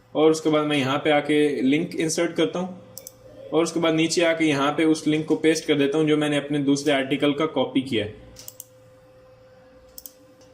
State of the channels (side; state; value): both; identical; correlation 1.00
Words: और उसके बाद मैं यहाँ पे आके लिंक इंसर्ट करता हूँ और उसके बाद नीचे आके यहाँ पे उस लिंक को पेस्ट कर देता हूँ जो मैंने अपने दूसरे आर्टिकल का कॉपी किया है।